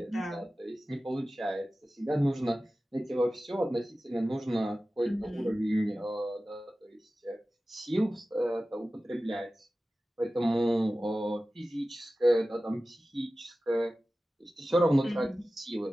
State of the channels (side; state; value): both; normal; correlation 0.96